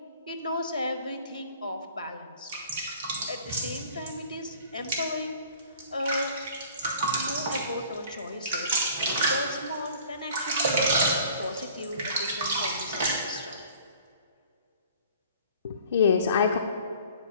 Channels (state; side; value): inverted; both; correlation -0.50